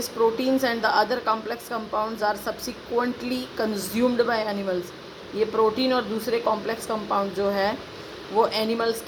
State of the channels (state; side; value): identical; both; correlation 1.00